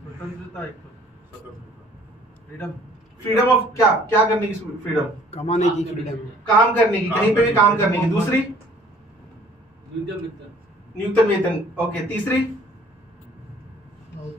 फ्रीडम ऑफ क्या करने की फ्रीडम? कमाने की फ्रीडम, काम करने की, कहीं पे भी काम करने की। दूसरी न्यूनतम वेतन, ओके। तीसरी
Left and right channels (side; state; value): both; normal; correlation 0.56